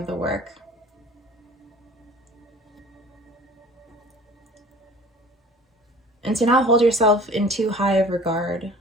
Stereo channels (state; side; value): normal; both; correlation 0.45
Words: the work. And to not hold yourself in too high of regard,